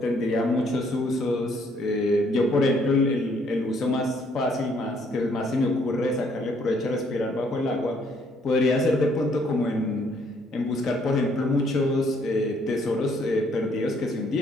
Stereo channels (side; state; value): both; normal; correlation 0.67